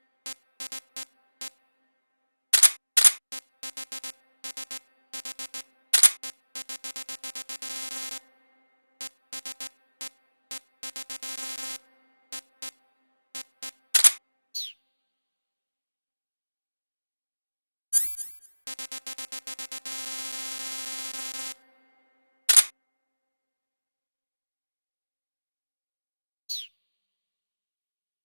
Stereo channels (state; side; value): inverted; both; correlation -1.00